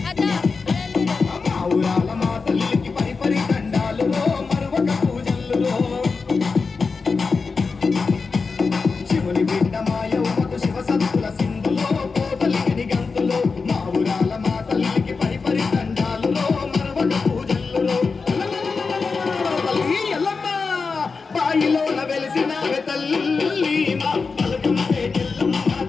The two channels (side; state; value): right; quieter; 4.6 dB